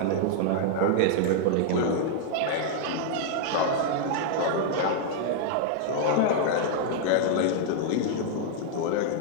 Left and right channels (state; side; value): different; both; correlation -0.01